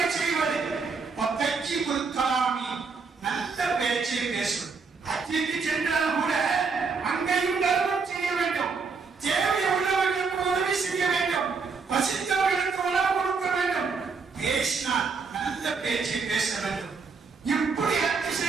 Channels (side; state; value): left; quieter; 4.9 dB